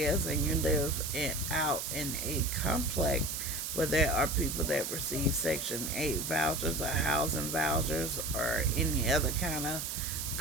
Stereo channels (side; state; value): right; noise; hiss, 4 dB below the sound